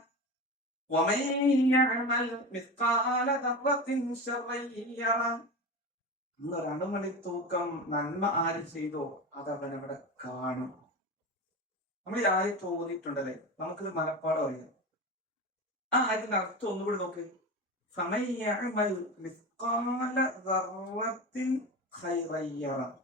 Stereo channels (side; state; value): both; normal; correlation 0.25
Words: വമൻ യഅമൽ മിസ്ഖാല ദർറത്തിൻ ശർറൻ യറ. അന്നൊരണുമണി തൂക്കം നന്മ ആര് ചെയ്തോ അതവൻ അവിടെ കാണും. നമ്മൾ ഈ ആയത്ത് ഓതിയിട്ടുണ്ടല്ലേ, നമുക്കിത് മനപ്പാടം അറിയാം. ആ ആയത്തിന്റെ അർത്ഥം ഒന്നുകൂടി നോക്ക്. ഫമൻ യഅമൽ മിസ്ഖാല ദർറത്തിൻ ഖൈറൻ യറ.